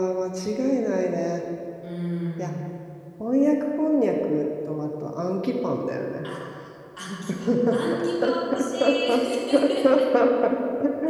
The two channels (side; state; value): both; identical; correlation 1.00